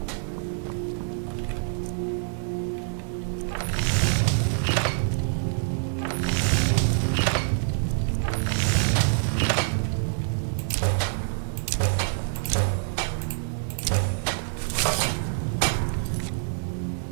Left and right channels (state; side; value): silent; left; 61 dB below the other